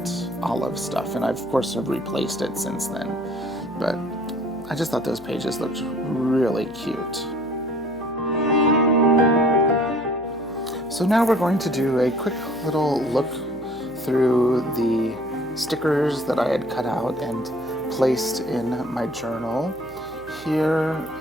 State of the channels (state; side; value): noise; right; hum, 22 dB below the sound